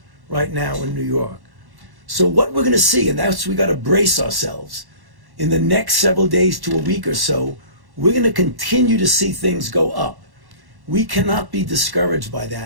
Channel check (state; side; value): late; left; 1.1 ms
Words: right now in New York. So what we're going to see, and that's we got to brace ourselves, in the next several days to a week or so, we're going to continue to see things go up. We cannot be discouraged by